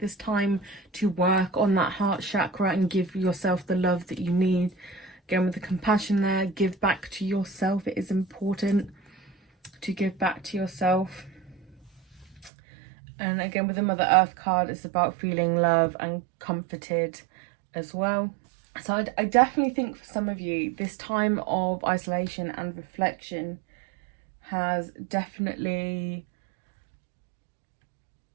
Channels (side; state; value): left; drops out; at 12.5 s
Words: this time to work on that heart chakra and give yourself the love that you need. Again, with the compassion there, give back to yourself. It is important to give back to yourself. And again, with the Mother Earth card, it's about feeling love and comforted as well. So I definitely think for some of you, this time of isolation and reflection has definitely